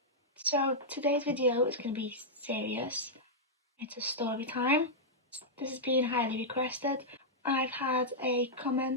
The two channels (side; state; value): both; normal; correlation -0.08